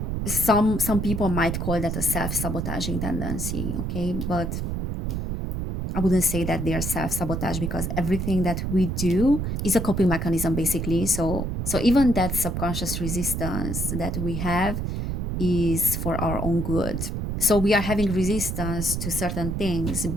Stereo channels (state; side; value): noise; right; rumble, 2 dB below the sound